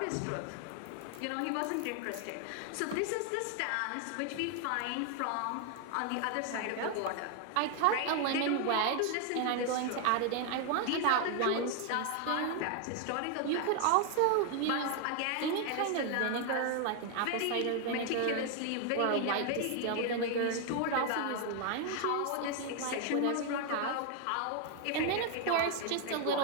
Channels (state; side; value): different; both; correlation 0.00